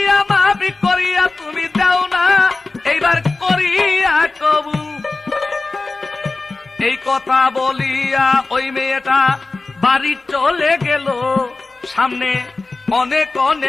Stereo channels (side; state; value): right; quieter; 3.5 dB